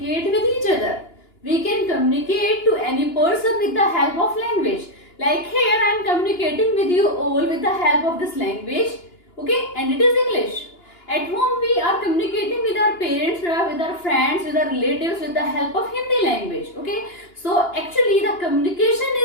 with each other. We can communicate to any person with the help of language. Like here, I am communicating with you all with the help of this language. Okay, and it is English. At home, we are communicating with our parents, with our friends, with our relatives with the help of Hindi language. Okay, so actually the communication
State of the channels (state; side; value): late; right; 2.9 ms